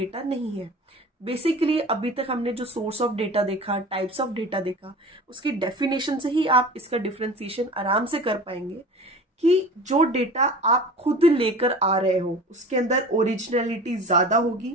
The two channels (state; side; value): normal; both; correlation 0.38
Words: नहीं है। बेसिकली अभी तक हमने जो सोर्स ऑफ डेटा देखा, टाइप्स ऑफ डेटा देखा, उसकी डेफिनेशन से ही आप इसका डिफरेंशिएशन आराम से कर पाएंगे कि जो डेटा आप खुद लेकर आ रहे हो उसके अंदर ओरिजिनलिटी ज्यादा